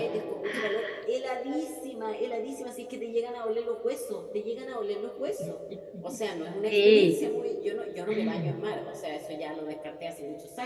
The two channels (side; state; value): both; identical; correlation 1.00